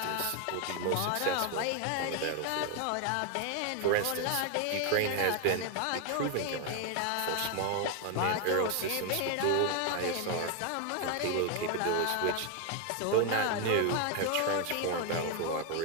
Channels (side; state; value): both; different; correlation 0.01